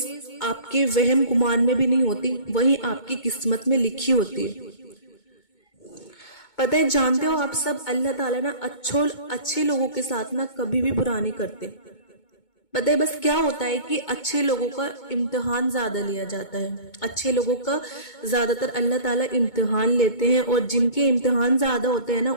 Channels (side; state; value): right; late; 2.2 ms